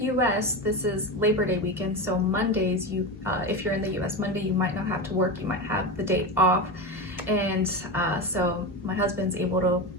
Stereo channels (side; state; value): both; normal; correlation 0.20